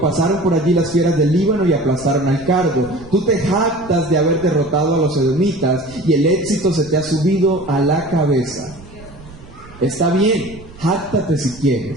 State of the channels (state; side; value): noise; right; rumble, 19 dB below the sound